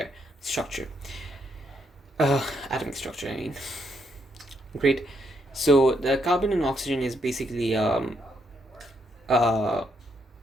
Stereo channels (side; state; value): both; normal; correlation 0.76